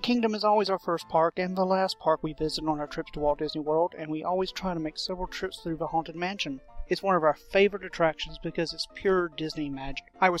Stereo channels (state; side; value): identical; both; correlation 1.00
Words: Kingdom is always our first park and the last park we visit on our trips to Walt Disney World, and we always try to make several trips through the Haunted Mansion. It's one of our favorite attractions because it's pure Disney magic. I